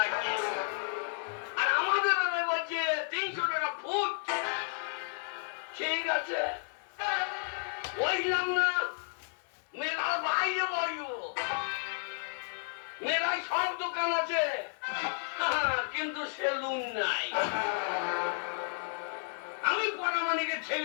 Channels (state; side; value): silent; right; 56 dB below the other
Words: আর আমাদের বেলায় বলছে 300 টাকা ফুট। ঠিক আছে, বসলাম না, মেলার বাইরে বসবো। মেলায় সব দোকান আছে, কিন্তু সেলুন নাই। আমি পরামানিকের